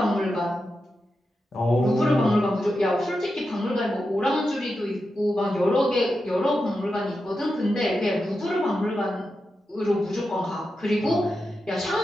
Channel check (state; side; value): normal; both; correlation 0.89